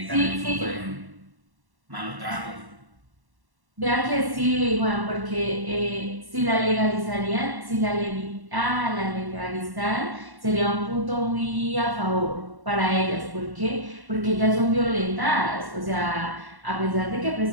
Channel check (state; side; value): late; left; 1.1 ms